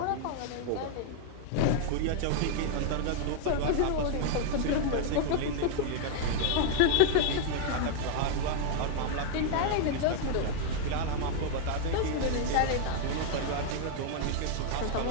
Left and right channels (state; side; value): different; both; correlation 0.00